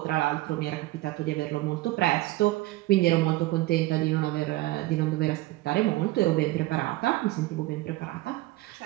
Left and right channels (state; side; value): quieter; left; 18.3 dB